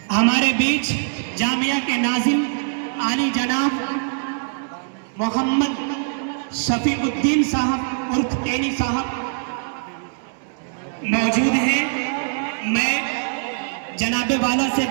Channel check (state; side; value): silent; left; digital silence